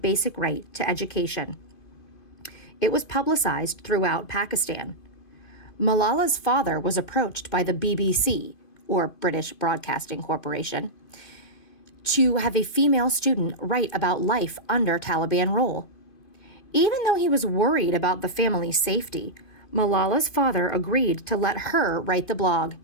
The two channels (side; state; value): right; late; 2.5 ms